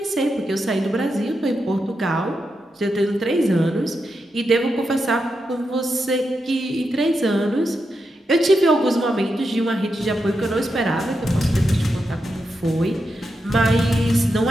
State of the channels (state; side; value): normal; both; correlation 0.86